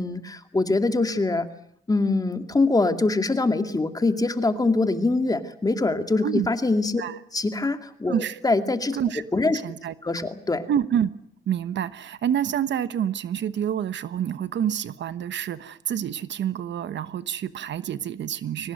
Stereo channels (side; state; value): both; normal; correlation 0.67